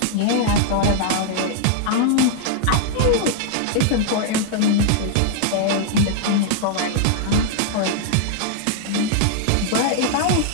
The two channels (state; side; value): different; both; correlation -0.01